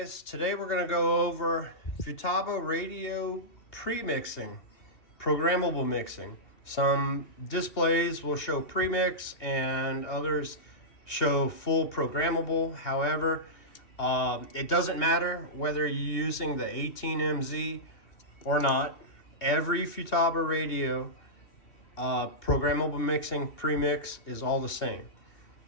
today we're going to go over Futaba radio pre-mixing, programmable mixing. Some displays will show premix and others show full programmable. However, it doesn't matter whether you're using the 18MZ or not. Every Futaba radio programmable mixing premix is all the same.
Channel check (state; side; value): late; right; 3.1 ms